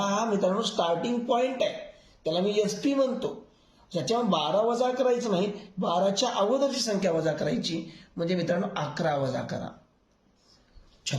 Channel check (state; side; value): identical; both; correlation 1.00